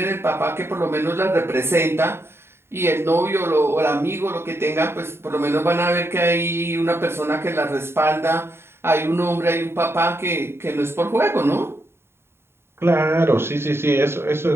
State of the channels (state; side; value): late; left; 0.12 ms